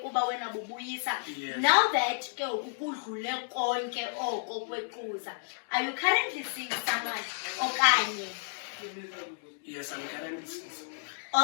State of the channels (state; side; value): silent; right; digital silence